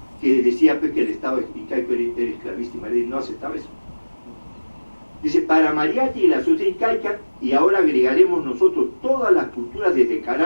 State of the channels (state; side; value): inverted; both; correlation -1.00